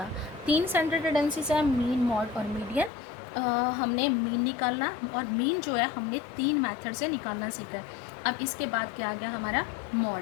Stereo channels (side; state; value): right; drops out; at 2.9 s